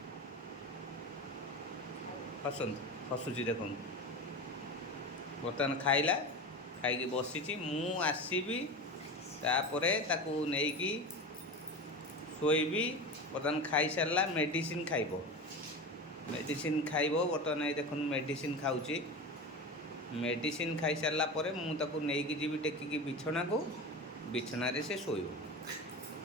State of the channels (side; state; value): both; normal; correlation 0.26